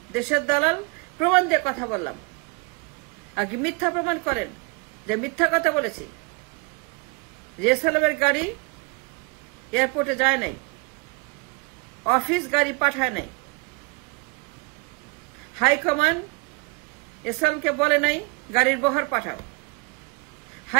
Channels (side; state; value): left; quieter; 28.7 dB